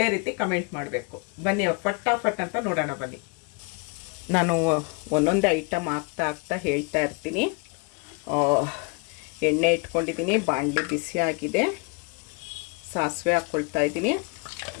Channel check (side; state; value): right; quieter; 31.8 dB